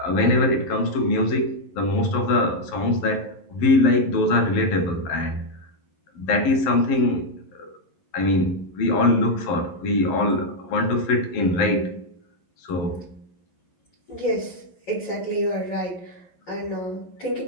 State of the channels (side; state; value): right; late; 11 ms